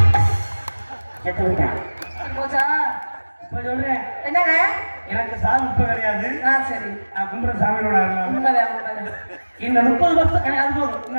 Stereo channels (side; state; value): both; inverted; correlation -1.00